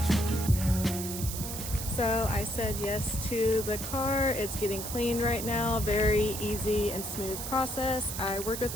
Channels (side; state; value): right; noise; hiss, 6 dB below the sound